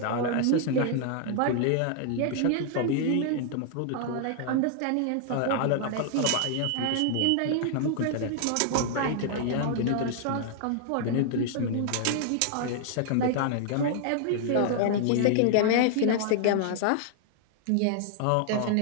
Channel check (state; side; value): different; both; correlation 0.00